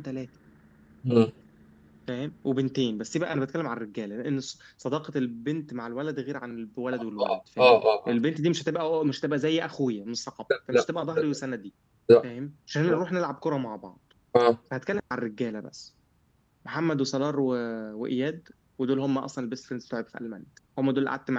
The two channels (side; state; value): both; identical; correlation 1.00